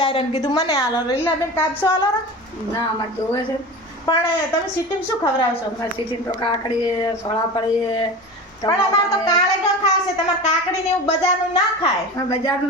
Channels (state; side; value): normal; both; correlation 0.31